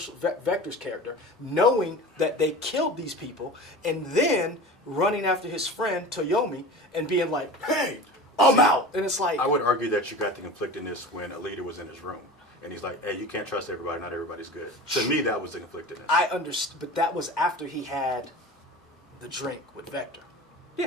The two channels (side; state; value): both; normal; correlation 0.35